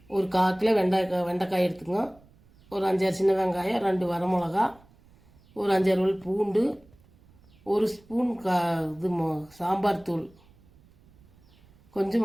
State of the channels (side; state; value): right; noise; rumble, 28 dB below the sound